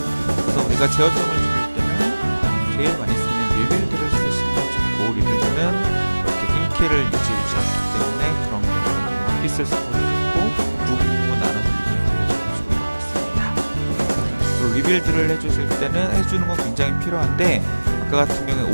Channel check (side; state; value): both; inverted; correlation -1.00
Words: 그래서 우리가 제어점을 줄일 때는 제일 많이 쓰는 리빌드를 쓰시면 좋고, 리빌드는 이렇게 인키를 유지해주지 않기 때문에 그런 경우에는 원피스를 써도 좋고, 부분 나눠서 리빌드를 해주는 좋을 것 같습니다. 리빌드를 해주실 때는 해주는 건 굉장히 필요한데, 아까 같은 경우에